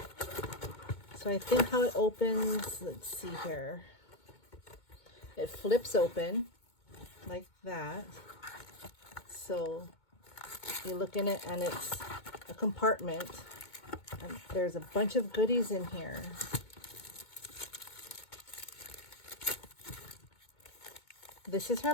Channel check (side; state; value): right; late; 2.2 ms